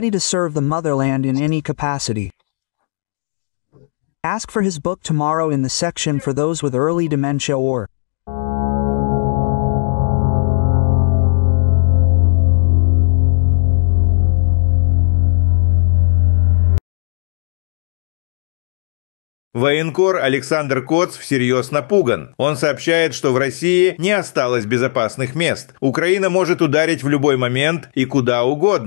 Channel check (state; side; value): silent; right; digital silence